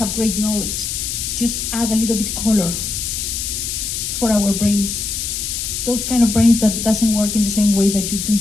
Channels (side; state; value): left; noise; hiss, 3 dB below the sound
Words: great knowledge. Just add a little bit color for our brains. Those kind of brains that doesn't work in the same way that you do.